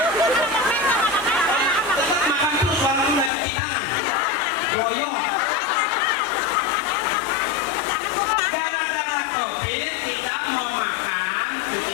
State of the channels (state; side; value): drops out; right; at 3.3 s